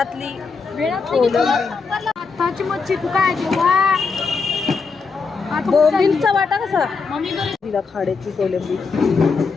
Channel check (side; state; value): right; quieter; 4.8 dB